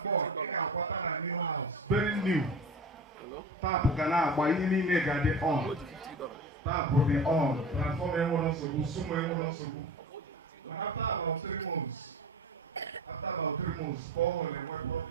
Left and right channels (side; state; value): both; normal; correlation 0.31